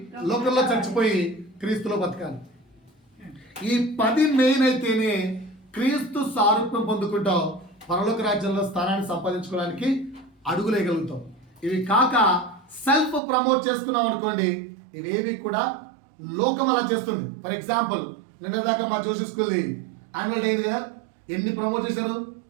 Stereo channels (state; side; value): drops out; left; at 13.2 s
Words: లోకంలో చచ్చిపోయి క్రీస్తులో బతకాలి. ఈ 10 మెయిన్ అయితేనే క్రీస్తు సారూప్యం పొందుకుంటావు, పరలోక రాజ్యంలో స్థానాన్ని సంపాదించుకోవడానికి అడుగులేయగలుగుతాం. ఇవి కాక సెల్ఫ్ ప్రమోట్ చేసుకున్నాం అనుకోండి, ఇవేవి కూడా లోకం అలా చేస్తుంది. ఫర్ ఎగ్జాంపుల్, నిన్న దాకా మా జోషి స్కూల్ది యాన్యువల్ డే అయింది కదా, ఎన్ని ప్రమోట్ చేశారు